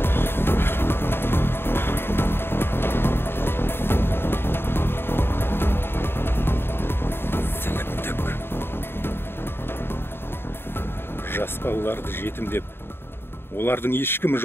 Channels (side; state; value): right; late; 0.11 ms